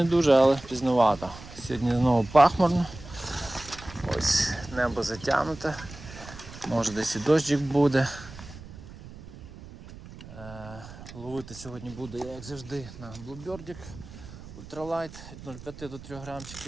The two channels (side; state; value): right; noise; rumble, 16 dB below the sound